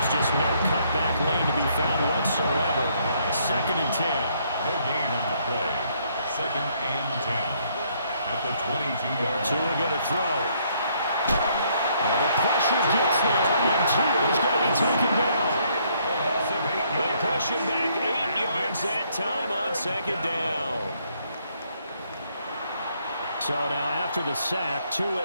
Just no cutback lane to be found whatsoever. 2nd and 10. No gain on the play. 2nd and 10. At the 22-yard line. Tua going to throw. And the pressure gets there, and Tua is going to be taken down. They push him back 8 yards that time on 2nd down. So now after the sack, Tua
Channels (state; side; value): inverted; both; correlation -0.69